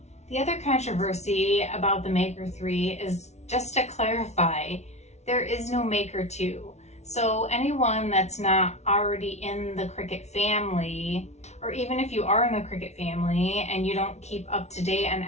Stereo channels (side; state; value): right; late; 0.32 ms